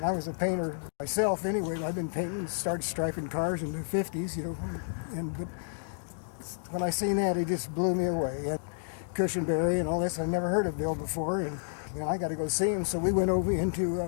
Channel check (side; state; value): right; silent; digital silence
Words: I was a painter myself anyway. I've been painting, started striping cars in the 50s, you know. But when I seen that, it just blew me away. And Cushenbery and all this, I never heard of Bill before, and you know, I got to go see him. So we went over into